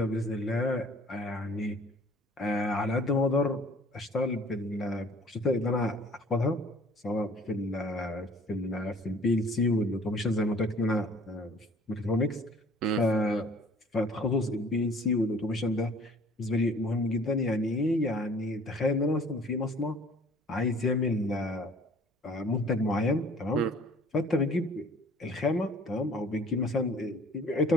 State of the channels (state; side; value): normal; both; correlation 0.52